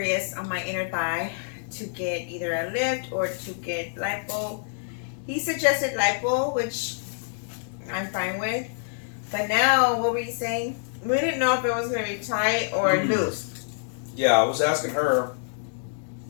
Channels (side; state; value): right; silent; 61 dB below the other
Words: on my inner thigh to get either a lift or to get lipo. He suggested lipo, which I'm fine with. But now, what were you saying? We didn't know if it was gonna be tight or loose. Yeah, I was asking her